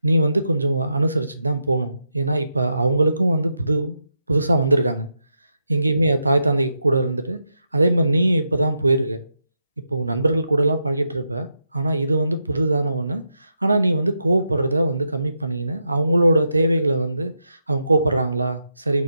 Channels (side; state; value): both; inverted; correlation -0.84